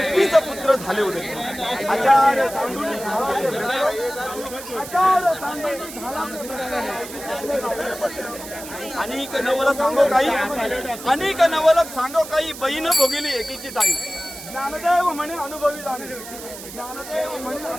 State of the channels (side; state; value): right; noise; hiss, 13 dB below the sound